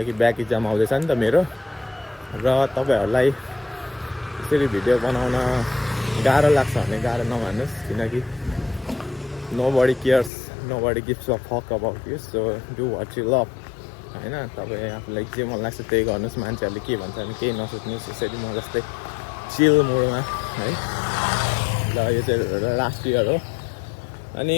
ब्याक इक्जाम आउँदैछ नि त मेरो। र तपाईँहरूलाई यसरी भिडियो बनाउन गाह्रो लाग्छ भने गाह्रो नमान्नुहोस्, किनकि nobody cares, nobody gives a fuck about you. So do what you love होइन। तपाईँ आफूलाई जे मन लाग्छ त्यही गर्नुहोस्, मान्छेहरूले के भन्छ भने केही नसोच्नुहोस्। यसरी म जस्तै चिल मुडमा है। र यो चाहिँ लास्ट इयर हो अनि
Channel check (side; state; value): right; drops out; at 10.3 s